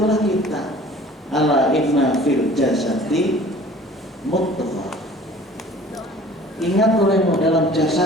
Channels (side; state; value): both; normal; correlation 0.48